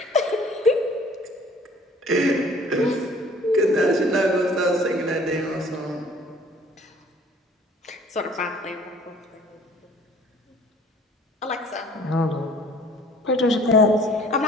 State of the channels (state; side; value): normal; both; correlation 0.53